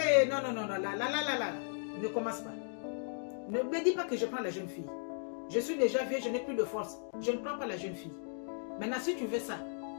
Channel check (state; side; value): silent; right; digital silence